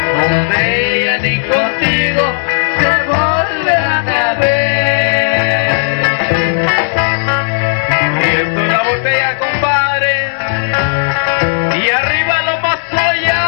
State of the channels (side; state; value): right; silent; 71 dB below the other